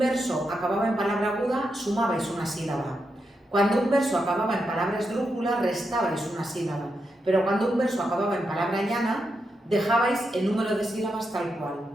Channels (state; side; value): normal; both; correlation 0.85